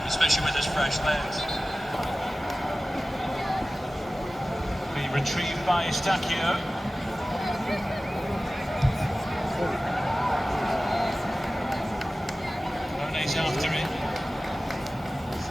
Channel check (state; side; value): normal; both; correlation 0.97